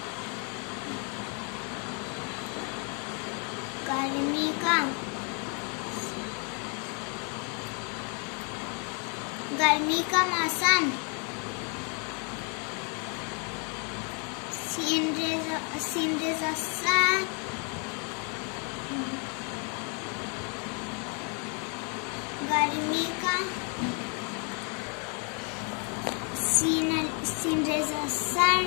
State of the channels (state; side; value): quieter; right; 38.0 dB